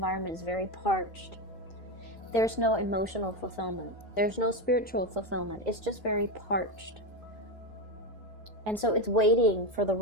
is very parched. There's no emotional fulfillment. There's no spiritual fulfillment. It's just very parched. And so it's waiting for the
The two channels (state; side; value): normal; both; correlation 0.13